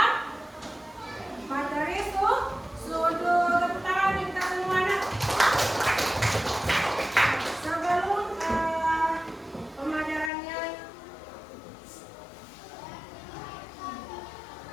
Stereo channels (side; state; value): right; drops out; at 10.3 s